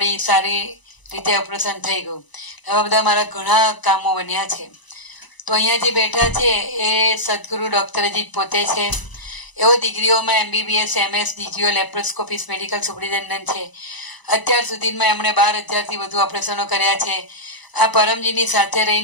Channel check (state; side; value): late; right; 1.0 ms